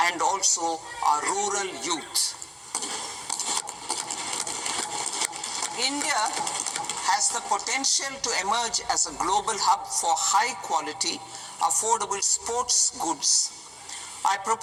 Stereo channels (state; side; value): identical; both; correlation 1.00